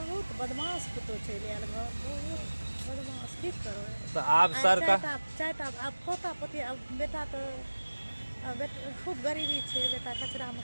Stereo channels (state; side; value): inverted; both; correlation -1.00